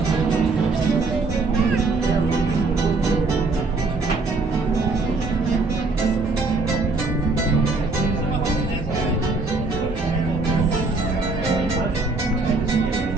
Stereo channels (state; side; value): quieter; left; 3.6 dB